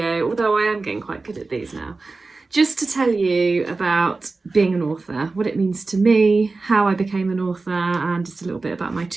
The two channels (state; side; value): quieter; left; 3.7 dB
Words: although I am getting quite good at these now, just to tell you about being an author, what it means to me, how I became an author, and just a little bit about my